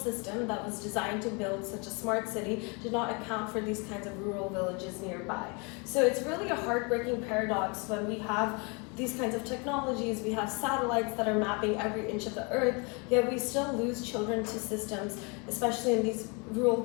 that was designed to build such a smart city did not account for these kinds of rural villages nearby. So it's really a heartbreaking paradox when we have these kinds of technologies, we have satellites that are mapping every inch of the earth, yet we still lose children to systems, especially in these rural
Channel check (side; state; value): right; quieter; 32.1 dB